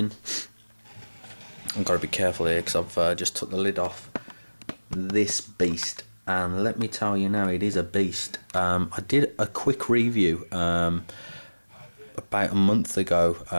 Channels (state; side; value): inverted; both; correlation -1.00